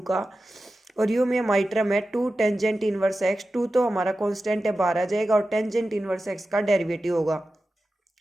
का, और u में हमारी टर्म है 2 टेंजेंट इनवर्स x, 2 तो हमारा कांस्टेंट है बाहर आ जाएगा और टेंजेंट इनवर्स x का डेरिवेटिव होगा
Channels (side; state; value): both; normal; correlation 0.93